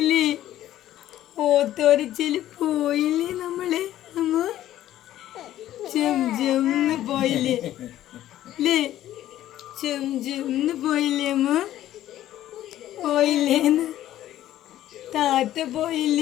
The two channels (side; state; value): right; quieter; 13.1 dB